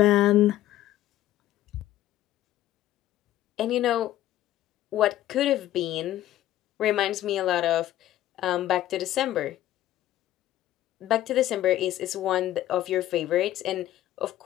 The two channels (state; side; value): quieter; right; 13.7 dB